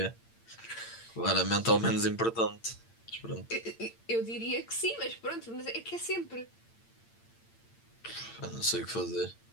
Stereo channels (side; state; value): right; late; 8.8 ms